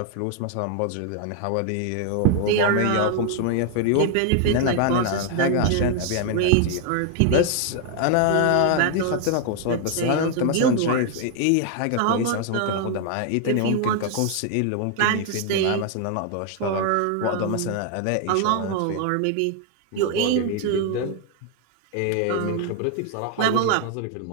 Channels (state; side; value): different; both; correlation 0.00